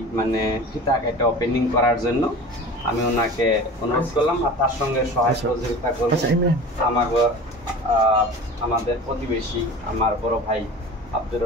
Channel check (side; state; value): both; normal; correlation 0.37